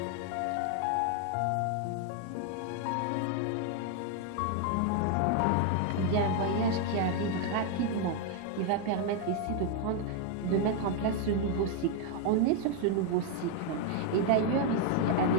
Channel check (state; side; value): different; both; correlation 0.01